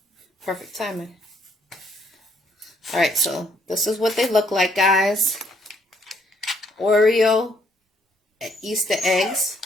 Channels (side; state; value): both; normal; correlation 0.68